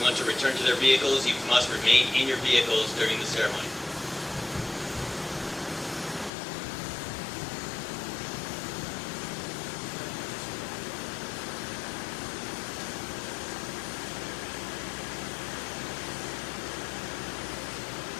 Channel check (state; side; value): drops out; right; at 6.3 s